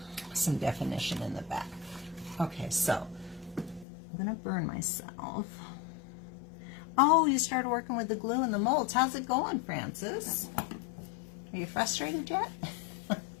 some definition in the back. Okay, so I'm going to burn myself. Oh, you started working with the glue and the molds. How's it going, Francis? Are you frustrated yet?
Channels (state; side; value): drops out; right; at 3.9 s